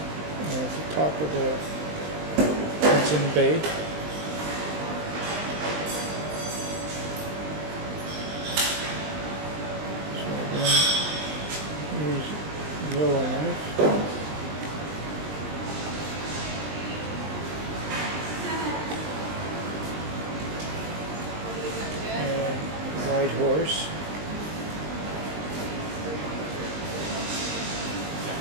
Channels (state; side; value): late; left; 20 ms